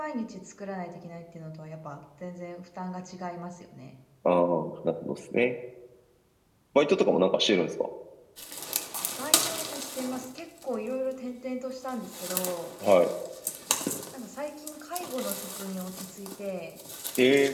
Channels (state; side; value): identical; both; correlation 1.00